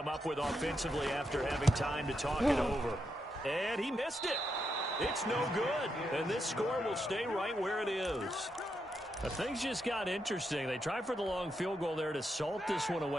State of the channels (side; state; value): both; normal; correlation 0.83